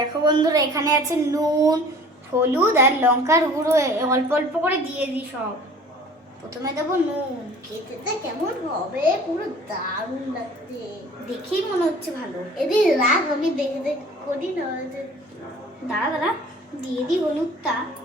বন্ধুরা, এখানে আছে নুন, হলুদ আর লঙ্কার গুঁড়ো। অল্প অল্প করে দিয়ে দিই সব। প্রথমে দেবো নুন। খেতে কেমন হবে, পুরো দারুণ লাগছে। দেখেই মনে হচ্ছে ভালো। এদিকে রাগ, আমি দেখে দেখে করি না। দাঁড়া দাঁড়া, দিয়ে দিই হলুদটা।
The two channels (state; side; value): normal; both; correlation 0.48